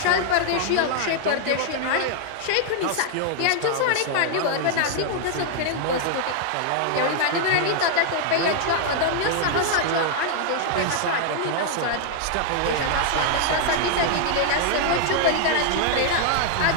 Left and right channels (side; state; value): both; different; correlation 0.00